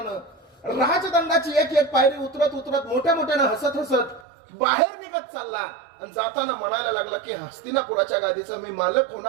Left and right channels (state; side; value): drops out; left; at 4.2 s